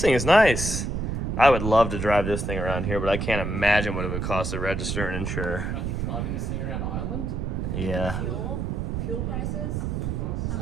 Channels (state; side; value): noise; right; rumble, 2 dB below the sound